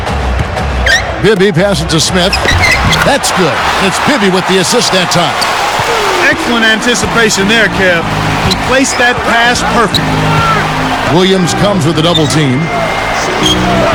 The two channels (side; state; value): both; identical; correlation 1.00